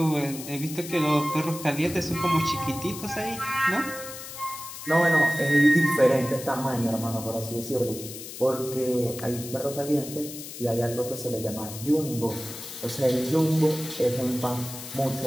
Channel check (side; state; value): left; noise; hiss, 11 dB below the sound